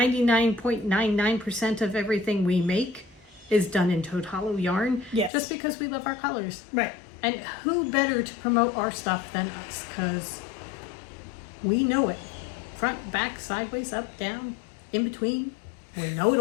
of everything we make is done in Toad Hollow yarn. Yes. Just because we love our colors. Right. And who better to promote our stuff than us? Because we know it. Front, back, sideways, up, down, in between. We know it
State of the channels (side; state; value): right; drops out; at 5.3 s